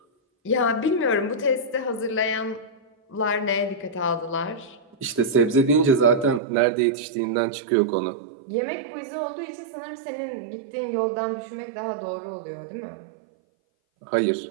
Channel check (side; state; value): left; drops out; at 6.4 s